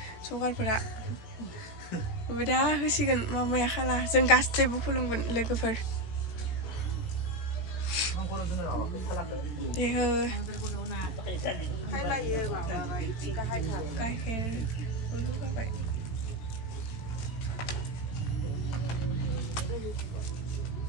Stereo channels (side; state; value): right; late; 18 ms